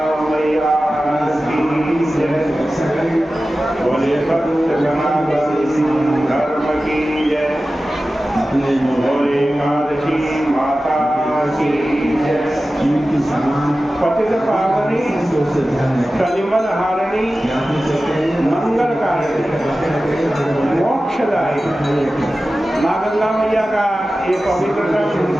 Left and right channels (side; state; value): both; normal; correlation 0.95